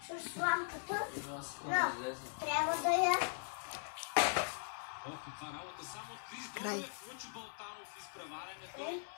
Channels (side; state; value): right; silent; 51 dB below the other